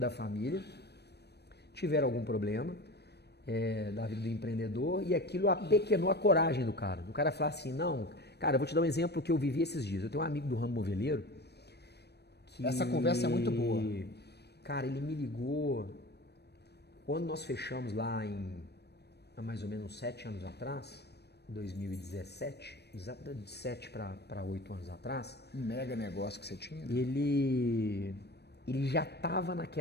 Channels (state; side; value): late; right; 0.48 ms